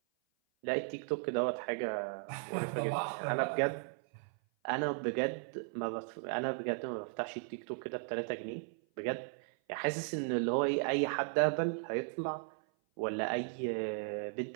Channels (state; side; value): silent; left; 54 dB below the other